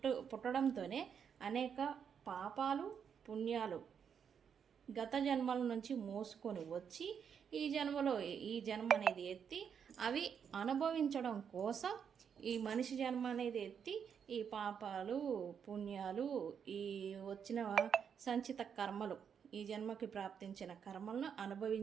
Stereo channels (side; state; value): left; quieter; 7.4 dB